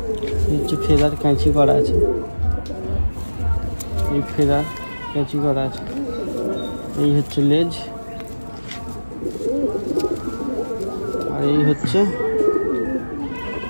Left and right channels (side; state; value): both; inverted; correlation -1.00